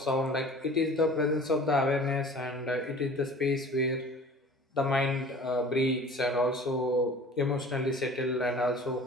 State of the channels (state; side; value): normal; both; correlation 0.44